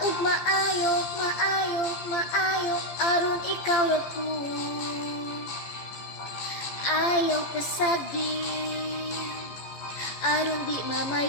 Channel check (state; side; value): late; right; 15 ms